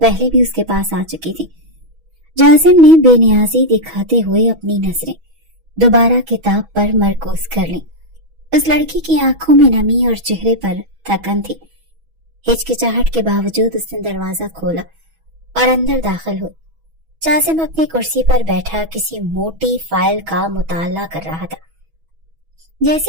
بھی اس کے پاس آ چکی تھی۔ جاسم نے بے نیازی دکھاتے ہوئے اپنی نظریں دوبارہ کتاب پر مرکوز کر لیں۔ اس لڑکی کی آنکھوں میں نمی اور چہرے پر تھکن تھی۔ ہچکچاہٹ کے باوجود اس نے دروازہ کھولا اور اندر داخل ہوئی۔ جاسم اپنی کرسی پر بیٹھا کسی موٹی فائل کا مطالعہ کر رہا تھا۔ جیسے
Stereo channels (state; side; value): late; left; 6.2 ms